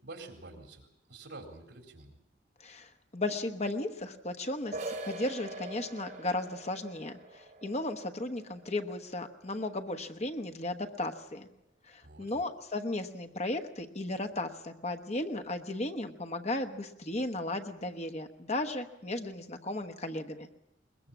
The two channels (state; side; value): normal; both; correlation 0.33